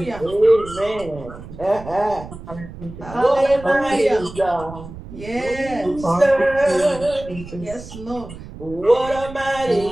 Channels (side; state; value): right; noise; rumble, 14 dB below the sound